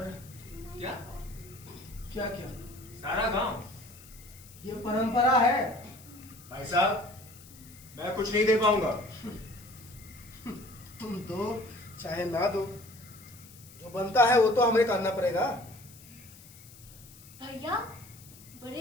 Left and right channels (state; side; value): noise; left; hiss, 21 dB below the sound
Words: क्या क्या क्या सारा गांव? ये परंपरा है। भाई साहब, मैं कुछ नहीं दे पाऊंगा। तुम दो चाहे ना दो, जो बनता है वो तो हमें करना पड़ेगा। भैया,